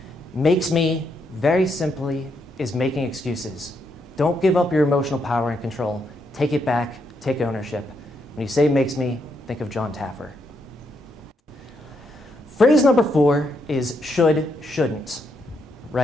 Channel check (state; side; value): normal; both; correlation 0.78